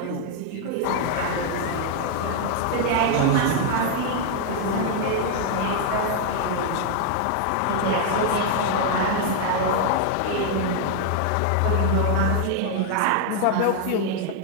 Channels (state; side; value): different; both; correlation 0.00